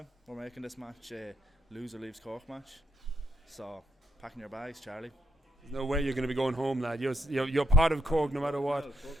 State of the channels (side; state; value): both; normal; correlation 0.80